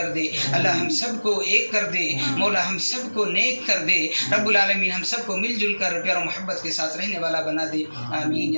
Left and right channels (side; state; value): both; inverted; correlation -1.00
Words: دے، اللہ ہم سب کو ایک کر دے، مولا ہم سب کو نیک کر دے، رب العالمین ہم سب کو مل جل کر پیار و محبت کے ساتھ رہنے والا بنا دے، آمین